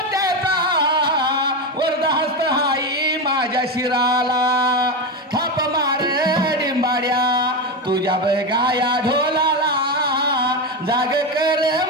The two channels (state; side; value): normal; both; correlation 0.14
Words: वरदहस्त हाई माझ्या शिराला थाप मार डिंबाड्या तुझ्या बगाया ढोलाला जाग कर